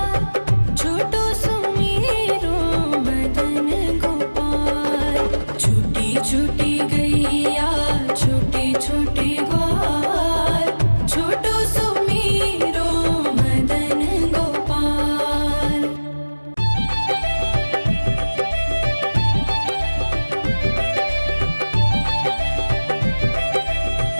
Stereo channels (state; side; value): inverted; both; correlation -1.00